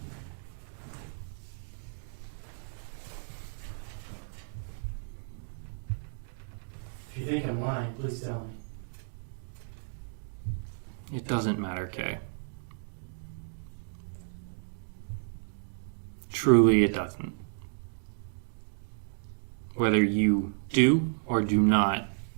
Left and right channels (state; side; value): silent; left; digital silence